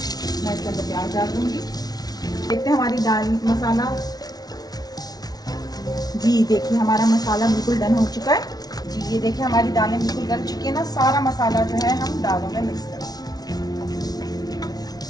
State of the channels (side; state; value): right; late; 0.19 ms